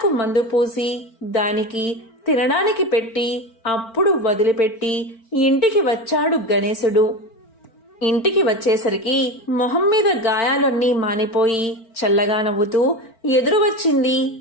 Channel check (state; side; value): late; right; 4.4 ms